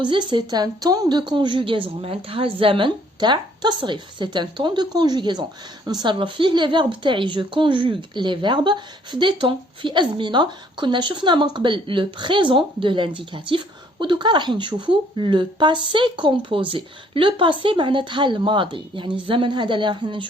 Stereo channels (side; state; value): both; normal; correlation 0.62